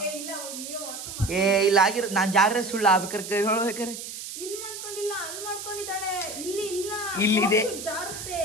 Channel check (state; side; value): noise; right; hiss, 9 dB below the sound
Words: ಇಲ್ಲ ಆಗಿರೋ ನಾನು ಜಾಗ್ರೆ ಸುಳ್ಳು ಆಗ್ಬೇಕಾರೆ ಹೇಳ್ಬೇಕಾರೆ ಇಲ್ಲಿದೆ.